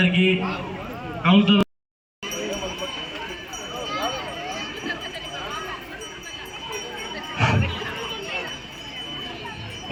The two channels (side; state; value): both; identical; correlation 1.00